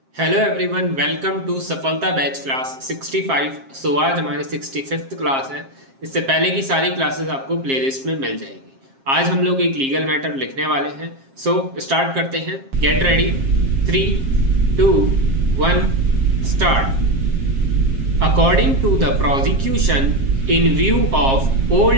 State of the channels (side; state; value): left; late; 7.5 ms